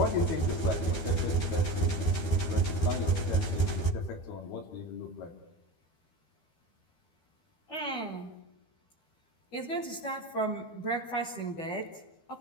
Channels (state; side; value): late; right; 12 ms